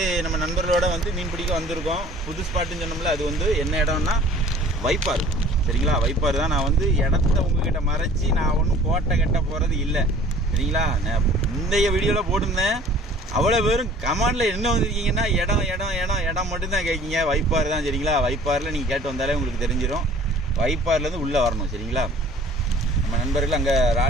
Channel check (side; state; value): both; normal; correlation 0.50